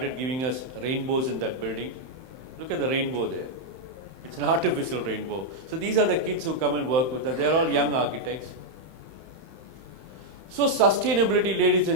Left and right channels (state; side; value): late; left; 31 ms